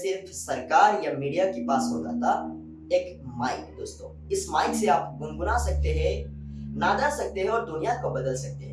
सरकार या मीडिया के पास होता था, एक माइक। दोस्तों इस माइक से आप गुनगुना सकते हैं, नादा सकते हैं और दुनिया को बदल सकते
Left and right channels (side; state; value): both; identical; correlation 1.00